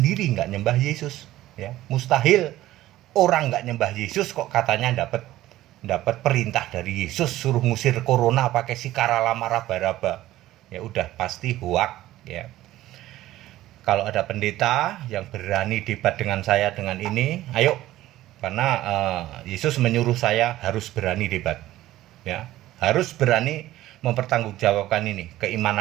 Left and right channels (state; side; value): quieter; left; 15.2 dB